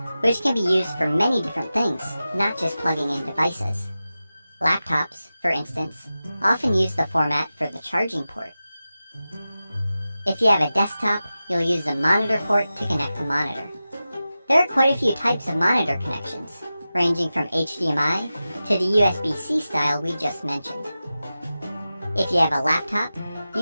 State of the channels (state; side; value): inverted; both; correlation -0.94